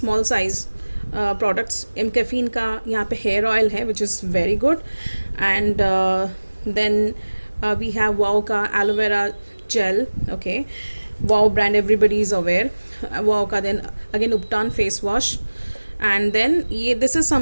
size products. Caffeine का यहाँ पे हेयर ऑयल है which is very good and then we have wow ka aloe vera gel. Okay, wow brand, everybody is aware. Wow ka then again Upton face wash, and then this is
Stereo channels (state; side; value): inverted; both; correlation -1.00